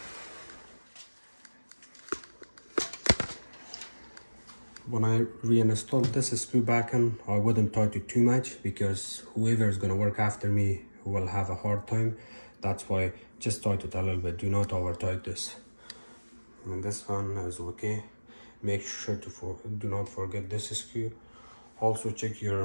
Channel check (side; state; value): both; inverted; correlation -1.00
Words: When I reinstalled this screw back in, I wouldn't tighten it too much because whoever is going to work after me will have a hard time. That's why just tighten it a little bit. Do not over tighten this. And this one is okay. Make sure to do not forget this screw. Also check